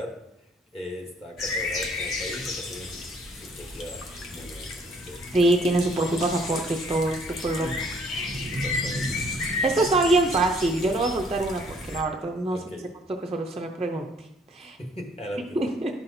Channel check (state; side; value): normal; both; correlation 0.61